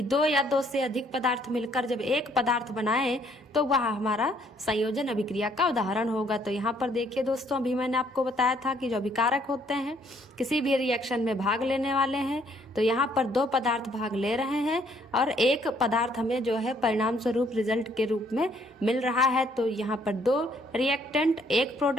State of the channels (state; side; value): normal; both; correlation 0.65